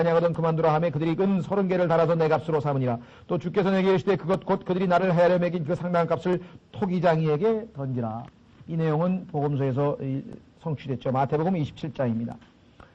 그만두라 하매 그들이 은 30개를 달아서 내 값으로 삼으니라. 또 주께서 내게 이르시되 그것 곧 그들이 나를 헤아려 매긴 그 상당한 값을 토기장이에게 던지라. 이 내용은 복음서에서 성취됐죠. 마태복음 27장입니다.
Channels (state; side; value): identical; both; correlation 1.00